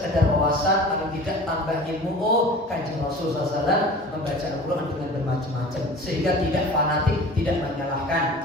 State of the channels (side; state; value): both; normal; correlation 0.40